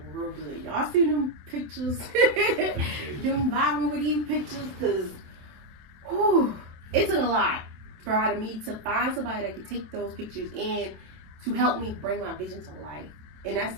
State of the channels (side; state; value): left; late; 27 ms